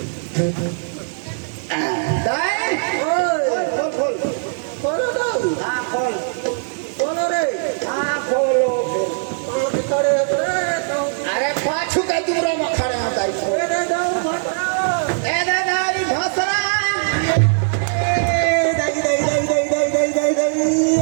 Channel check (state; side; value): silent; left; 65 dB below the other